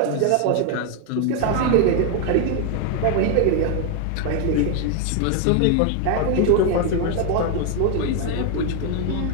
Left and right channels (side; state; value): both; different; correlation 0.01